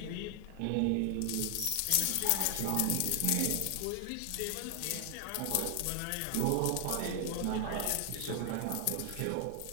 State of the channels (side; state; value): both; different; correlation 0.00